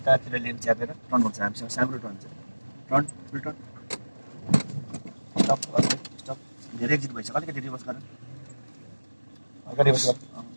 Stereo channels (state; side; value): inverted; both; correlation -1.00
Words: लेन च्यापेर टर्न गर्छ हामीसँग, सानो टर्न छ, टर्न फुल टर्न, स्टप स्टप, धेरै एक्जिट भइसक्यो, अलिकति रिभर्स गर, अगाडि रिभर्स गर,